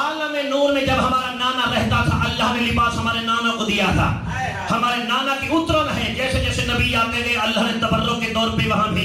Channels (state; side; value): identical; both; correlation 1.00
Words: نور میں جب ہمارا نانا رہتا تھا اللہ نے لباس ہمارے نانا کو دیا تھا. ہمارے نانا کی اترن ہے, جیسے جیسے نبی آتے گئے اللہ نے تبرک کے طور پہ وہاں